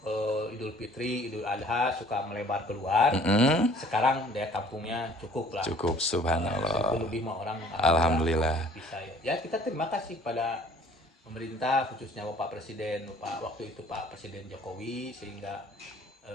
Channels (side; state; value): both; normal; correlation 0.54